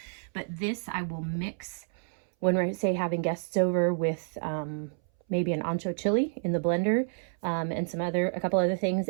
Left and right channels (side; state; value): left; silent; 58 dB below the other